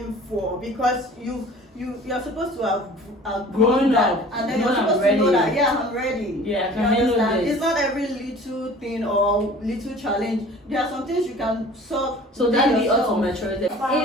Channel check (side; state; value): both; normal; correlation 0.46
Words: for because you're supposed to have Grown that, up. and then No, you're I'm supposed to know ready. that I'm ready. Yeah, I You can handle understand? this. It's not every little thing or little challenge. There are some things you can solve. So within that be yourself. also maturity.